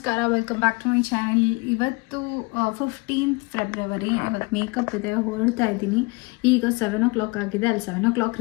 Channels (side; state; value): right; quieter; 26.7 dB